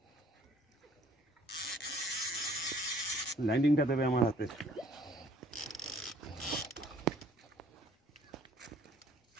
ল্যান্ডিংটা দেবে আমার হাতে।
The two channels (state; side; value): normal; both; correlation 0.58